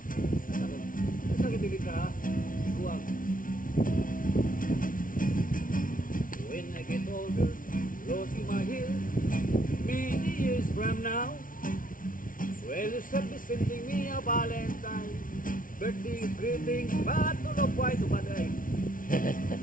Sa gitili ka, ikuang. When I get older, losing my hair, many years from now, well, you shall be sending me a Valentine, birthday greeting, but to look quite to baday.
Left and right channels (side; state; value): right; late; 0.39 ms